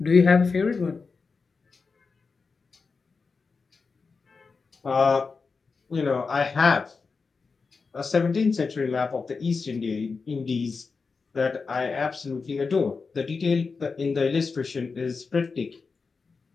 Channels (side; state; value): right; quieter; 4.7 dB